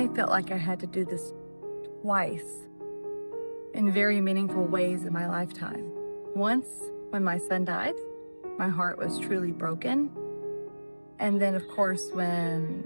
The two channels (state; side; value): inverted; both; correlation -1.00